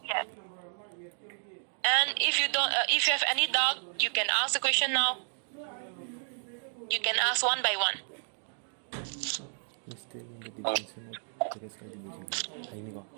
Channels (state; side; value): silent; left; 57 dB below the other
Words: And if you have any doubt, you can ask the question now. You can ask one by one.